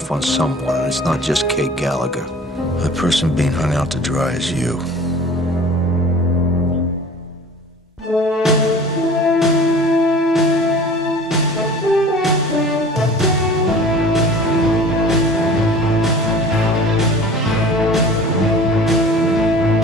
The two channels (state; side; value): normal; both; correlation 0.43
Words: on someone, and it's not just Kate Gallagher. The person being hung out to dry is you.